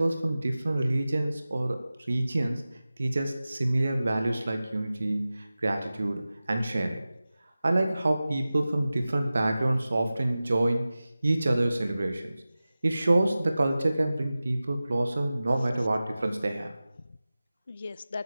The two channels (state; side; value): inverted; both; correlation -0.96